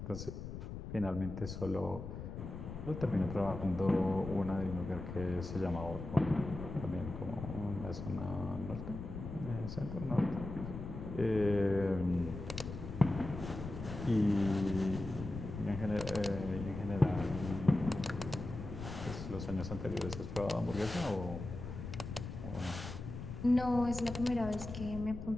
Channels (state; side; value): noise; left; rumble, 8 dB below the sound